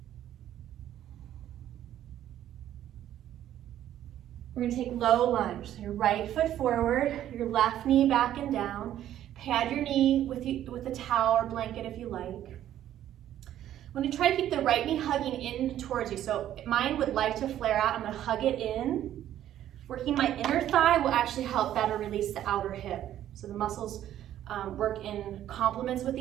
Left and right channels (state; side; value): quieter; left; 11.8 dB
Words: We're gonna take low lunge. So your right foot forward, your left knee back and down. Pad your knee with a towel or blanket if you like. I'm gonna try to keep the right knee hugging in towards you. So mine would like to flare out. I'm gonna hug it in. Working my inner thigh will actually help better release the outer hip. So the muscles work in complements with